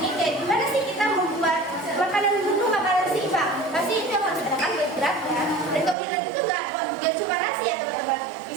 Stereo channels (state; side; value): drops out; left; at 6.0 s